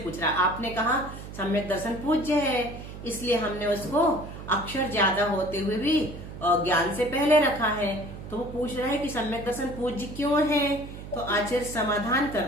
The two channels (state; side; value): noise; right; hum, 12 dB below the sound